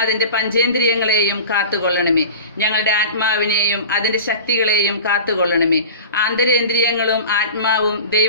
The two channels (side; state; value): both; inverted; correlation -0.36